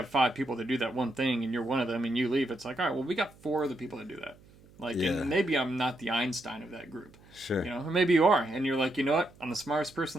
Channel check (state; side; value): noise; right; hum, 25 dB below the sound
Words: 5 people that do that one thing, and you're one of them, and you leave, it's like, all right, well, we got 4 other people that do that. Like, and maybe I'm not the Einstein of that group. Sure. Or maybe you are, and you're like, you know what? I'm the smartest